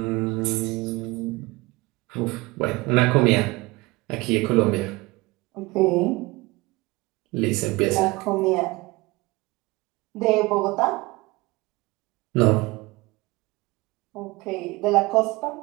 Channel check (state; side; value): quieter; left; 22.6 dB